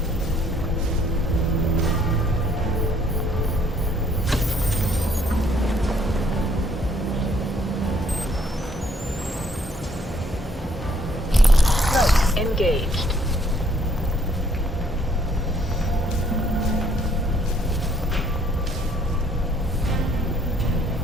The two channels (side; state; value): both; normal; correlation 0.64